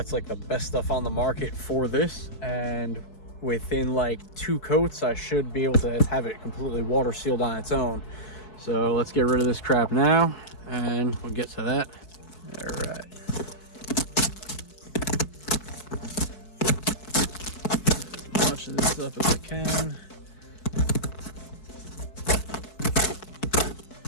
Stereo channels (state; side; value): late; right; 4.9 ms